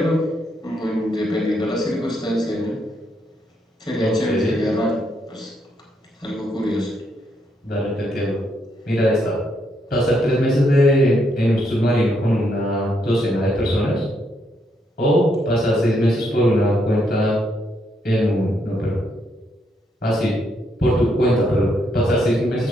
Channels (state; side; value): normal; both; correlation 0.76